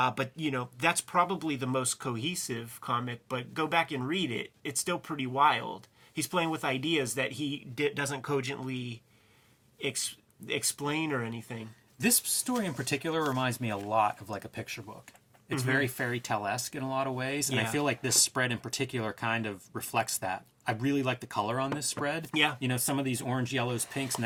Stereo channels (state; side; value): identical; both; correlation 1.00